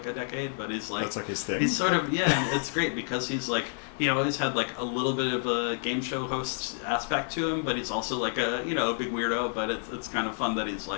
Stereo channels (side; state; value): right; silent; digital silence